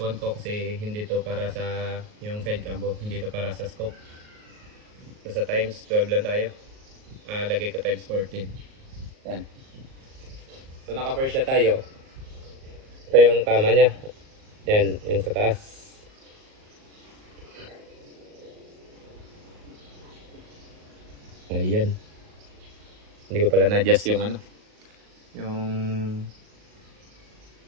ko kasi hindi to para sa yung side cam, hindi to para sa scope. So sa times 12 lang tayo. Lagay ko times 14. Yan. So naka-first siya tayo. Ito yung tama niya. Yan, yung sa taas. Ayan. Hindi ko pala na-adjust yung yung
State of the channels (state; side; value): late; left; 38 ms